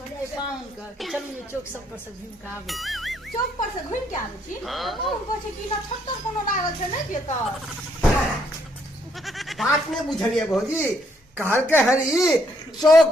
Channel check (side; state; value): both; normal; correlation 0.71